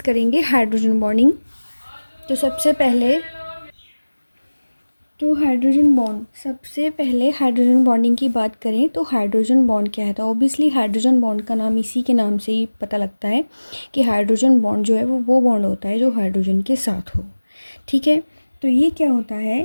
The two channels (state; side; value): inverted; both; correlation -1.00